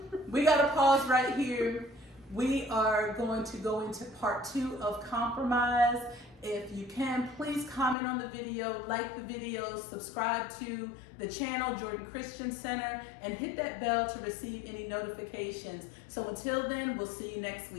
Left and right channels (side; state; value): right; drops out; at 8.0 s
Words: We gotta pause right here. We are going to go into part 2 of compromise. If you can, please comment on the video, like the video, subscribe to the channel, Jordan Christian Center, and hit that bell to receive any notifications. So until then, we'll see you next